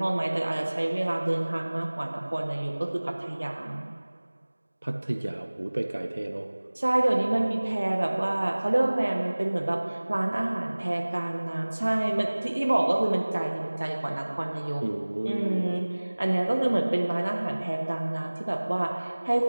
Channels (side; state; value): both; inverted; correlation -1.00